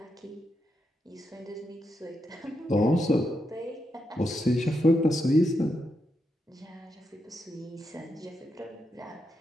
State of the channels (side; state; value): both; normal; correlation 0.83